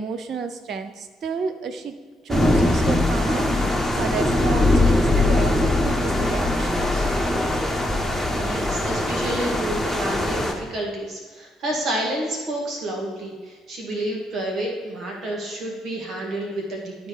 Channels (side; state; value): both; normal; correlation 0.80